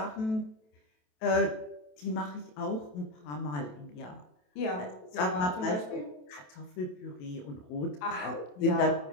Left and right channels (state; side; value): late; right; 27 ms